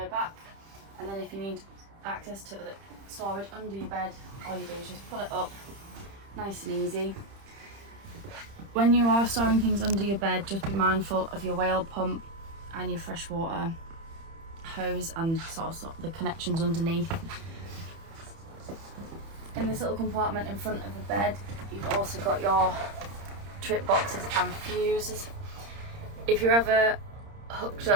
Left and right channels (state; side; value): late; left; 30 ms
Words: back, and then if you need access to the storage under your bed, all you do is just pull it up, nice and easy. When you are storing things under your bed, just be mindful of your whale pump and your freshwater hose and sort of the connections underneath. In this little compartment in front of the bed, you've also got your trip boxes and fuses. If you're ever hooked